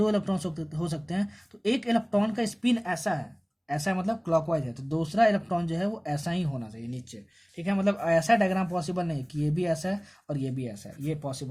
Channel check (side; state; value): both; identical; correlation 1.00